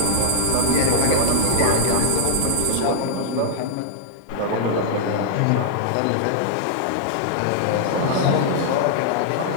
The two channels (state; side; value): different; both; correlation -0.01